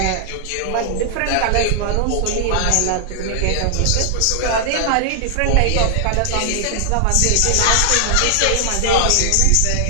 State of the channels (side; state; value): both; different; correlation 0.00